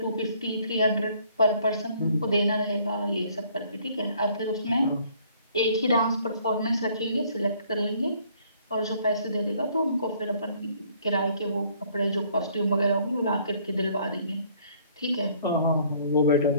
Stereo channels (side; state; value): both; inverted; correlation -0.61